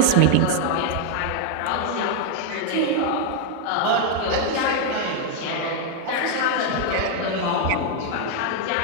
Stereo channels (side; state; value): both; different; correlation 0.00